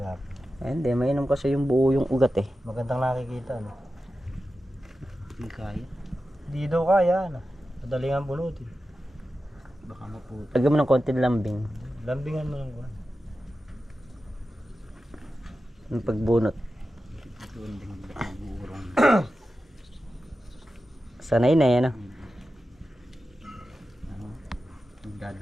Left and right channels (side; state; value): both; normal; correlation 0.92